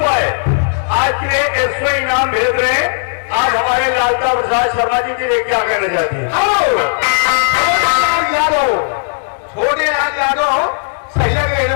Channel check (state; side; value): silent; right; digital silence